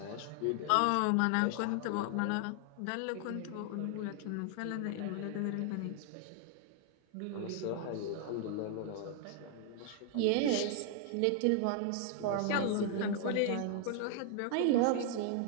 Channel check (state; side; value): different; both; correlation 0.00